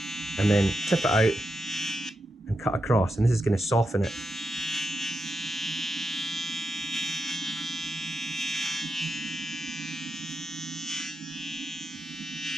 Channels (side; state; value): both; normal; correlation 0.88